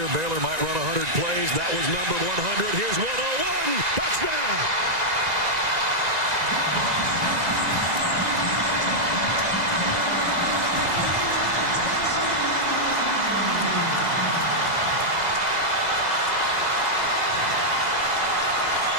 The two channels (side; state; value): left; late; 2.0 ms